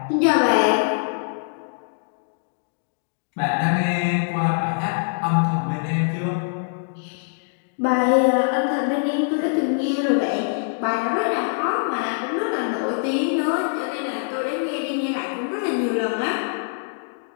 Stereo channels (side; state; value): right; silent; digital silence